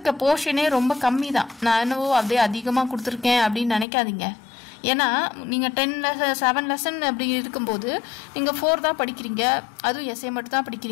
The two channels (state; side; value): drops out; right; at 3.9 s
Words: போர்ஷனே ரொம்ப கம்மி தான். நான் என்னவோ அப்படியே அதிகமாக கொடுத்துருக்கேன் அப்படின்னு நினைக்காதீங்க. ஏன்னா நீங்கள் 7 லெசன் அப்படி இருக்கும்போது நீங்கள் 4 தான் படிக்கிறீங்க. அதுவும் எஸ்ஏ மட்டும் தான்